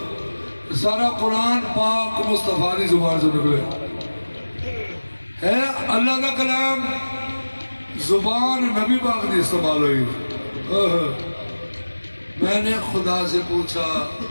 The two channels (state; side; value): inverted; both; correlation -1.00